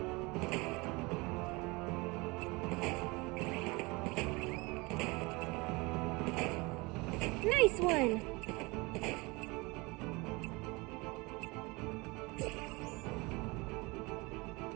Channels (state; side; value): quieter; left; 25.2 dB